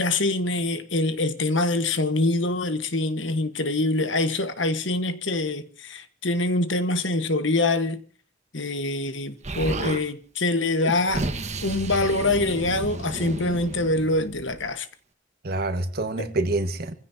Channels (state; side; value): normal; both; correlation 0.20